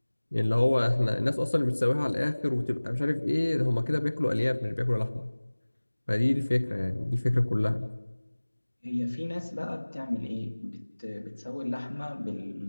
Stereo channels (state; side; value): inverted; both; correlation -1.00